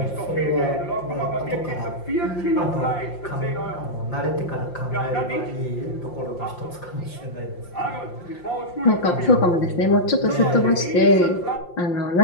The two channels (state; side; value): late; right; 5.7 ms